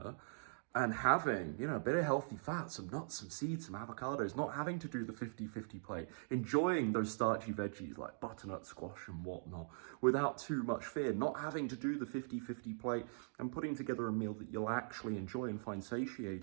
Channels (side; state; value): left; silent; digital silence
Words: and having, a bit of healthy fat, some nuts, some seeds, some avocados, not having to do the 50-50 plate, enjoying those starchy veggies like butternut squash and whatnot without too much fear, not having to do the 50-50 plate and putting together a meal that you'll actually enjoy and find